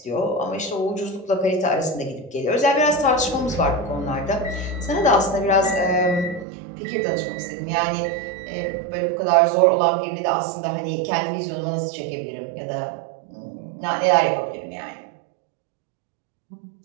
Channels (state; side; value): drops out; left; at 6.5 s